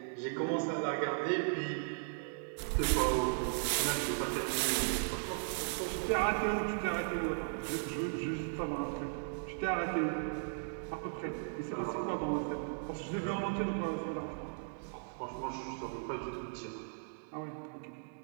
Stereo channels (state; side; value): silent; left; digital silence